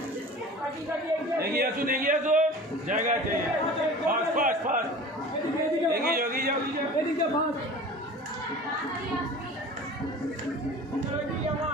এগিয়ে আসুন জায়গা আছে ফাস্ট ফাস্ট ফাস্ট এগিয়ে যাও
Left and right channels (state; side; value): normal; both; correlation 0.39